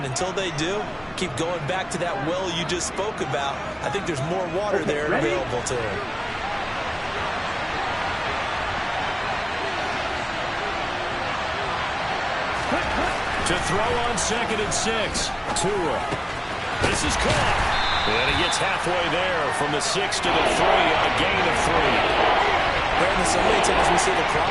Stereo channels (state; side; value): identical; both; correlation 1.00